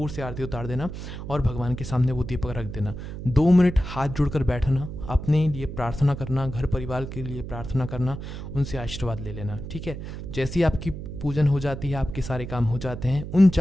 से आरती उतार देना और भगवान के सामने वो दीपक रख देना। 2 मिनट हाथ जोड़कर बैठना, अपने लिए प्रार्थना करना, घर परिवार के लिए प्रार्थना करना, उनसे आशीर्वाद ले लेना, ठीक है। जैसे ही आपकी पूजन हो जाती है, आपके सारे काम हो जाते हैं, उन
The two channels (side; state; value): right; noise; hum, 8 dB below the sound